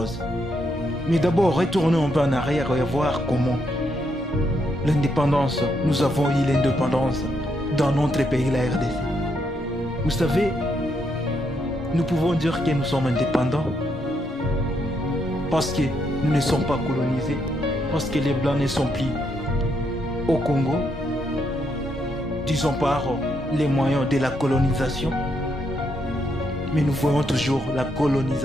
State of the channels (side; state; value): both; normal; correlation 0.77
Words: Mais d'abord, retournons un peu en arrière et voir comment l'indépendance, nous avons eu l'indépendance dans notre pays, la RDC. Vous savez, nous pouvons dire que nous sommes indépendants parce que nous ne sommes pas colonisés, parce que les Blancs ne sont plus au Congo, disons par les moyens de la colonisation. Mais nous voyons toujours la